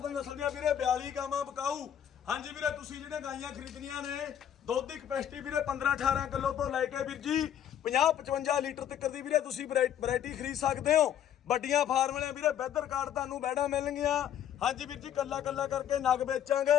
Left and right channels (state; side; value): quieter; right; 10.0 dB